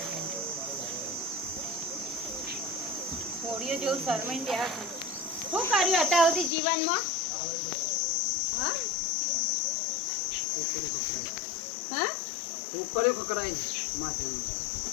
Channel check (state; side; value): drops out; right; at 6.5 s